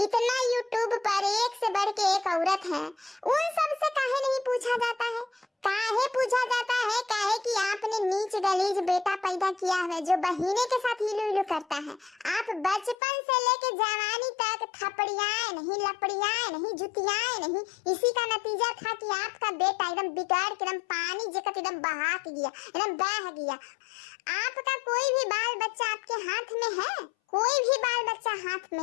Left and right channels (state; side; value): drops out; right; at 13.0 s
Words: इतना यूट्यूब पर एक से बढ़ के एक औरत है, उन सब से काहे नहीं पूछा जाता है? काहे पूछा जाता है? काहे कि आपने नीच गलीज बेटा पैदा किया है जो बहिने के साथ हिलू हिलू करता है। आप बचपन से लेके जवानी तक थपड़ियाए नहीं, लपड़ियाए नहीं, जुतियाए नहीं। इसी का नतीजा था कि आपका बेटा एकदम बिगाड़ के एकदम पानी जकत एकदम बहा के गया, एकदम बह गया। आपका कोई भी बाल बच्चा आपके हाथ में है? कोई भी बाल बच्चा हाथ में